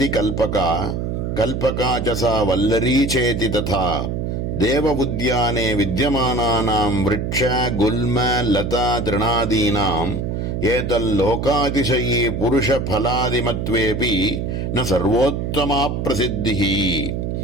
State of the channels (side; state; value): right; noise; hum, 2 dB below the sound